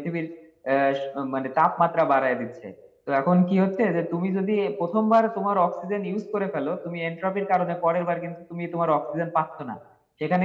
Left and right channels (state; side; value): identical; both; correlation 1.00